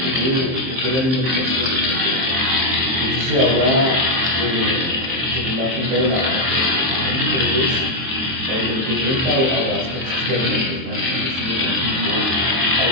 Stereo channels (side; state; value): left; late; 23 ms